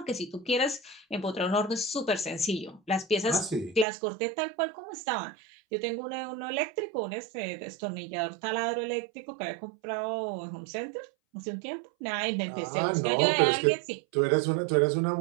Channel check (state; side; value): drops out; left; at 3.9 s